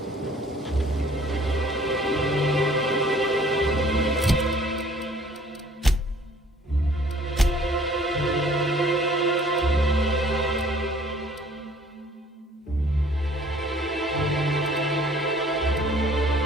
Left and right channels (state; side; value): normal; both; correlation 0.56